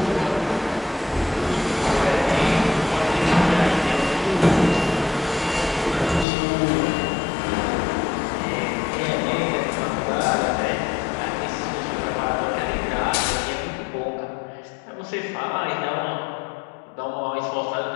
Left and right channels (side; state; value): right; drops out; at 6.2 s